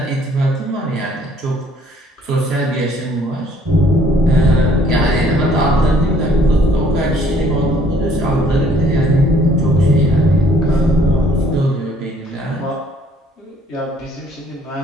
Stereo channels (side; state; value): both; normal; correlation 0.61